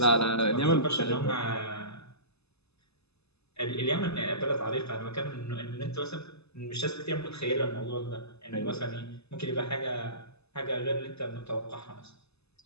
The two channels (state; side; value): late; right; 0.79 ms